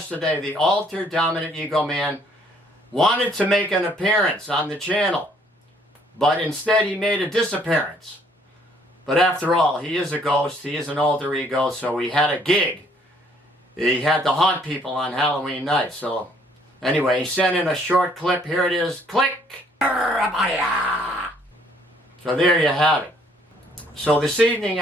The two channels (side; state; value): both; normal; correlation 0.63